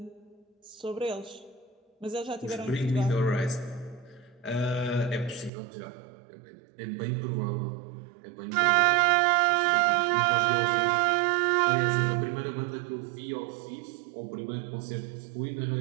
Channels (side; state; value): left; drops out; at 5.5 s